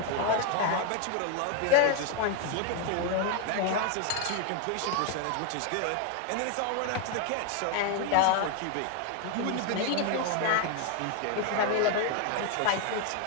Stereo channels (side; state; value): both; different; correlation 0.00